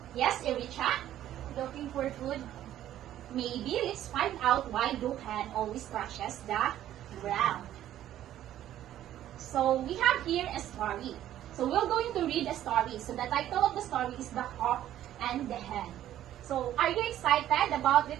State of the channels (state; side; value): quieter; left; 12.3 dB